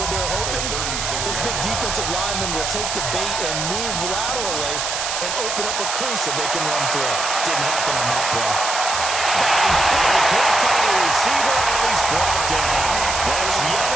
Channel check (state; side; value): noise; right; hiss, 2 dB below the sound